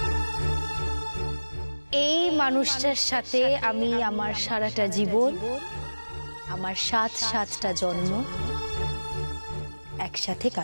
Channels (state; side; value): inverted; both; correlation -1.00